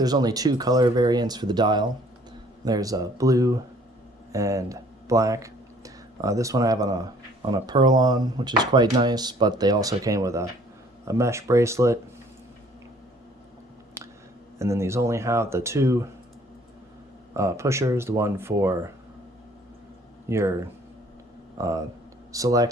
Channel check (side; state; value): both; normal; correlation 0.58